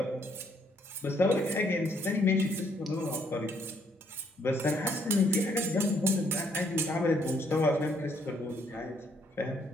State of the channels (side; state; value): both; normal; correlation 0.69